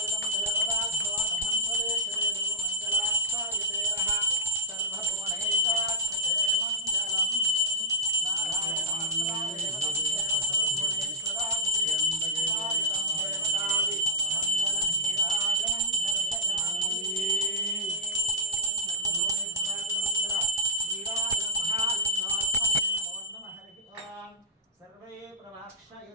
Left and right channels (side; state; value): both; normal; correlation -0.07